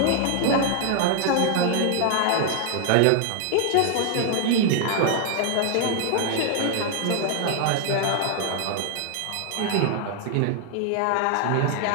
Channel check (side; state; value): both; different; correlation 0.00